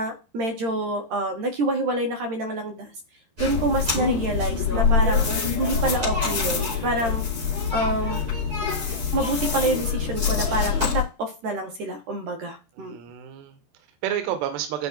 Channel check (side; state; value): left; late; 13 ms